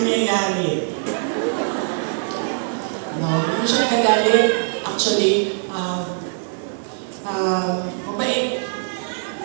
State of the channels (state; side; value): silent; left; digital silence